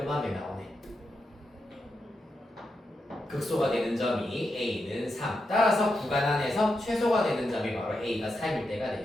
나오네. 극소가 되는 점이 A는 3 따라서 구간 안에서 최소가 되는 점이 바로 A가 3일 때가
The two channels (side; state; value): both; normal; correlation 0.86